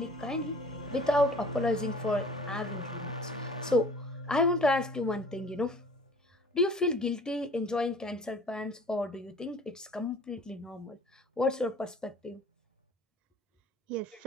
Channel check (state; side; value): normal; both; correlation 0.48